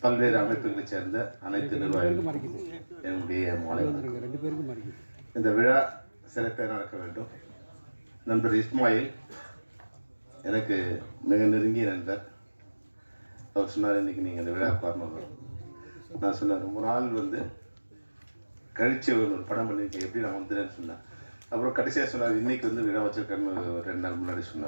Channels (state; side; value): inverted; both; correlation -1.00